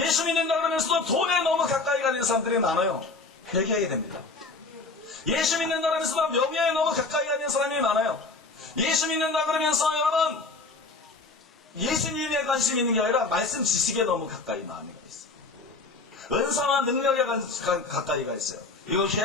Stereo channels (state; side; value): quieter; right; 3.7 dB